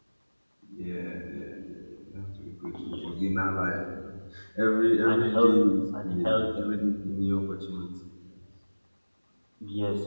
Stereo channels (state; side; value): inverted; both; correlation -1.00